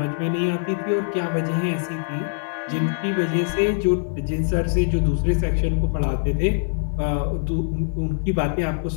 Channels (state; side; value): silent; right; 60 dB below the other